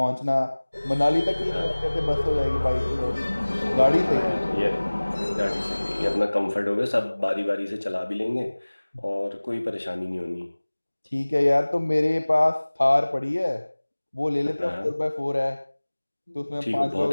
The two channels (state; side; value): inverted; both; correlation -1.00